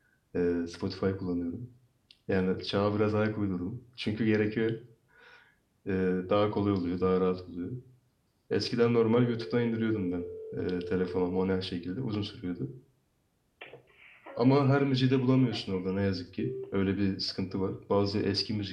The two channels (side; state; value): both; identical; correlation 1.00